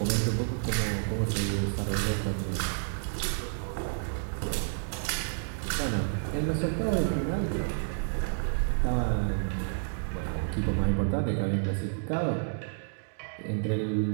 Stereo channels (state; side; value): silent; left; digital silence